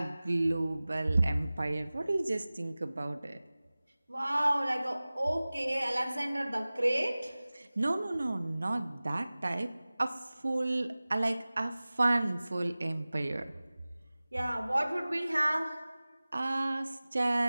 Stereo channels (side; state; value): both; inverted; correlation -0.98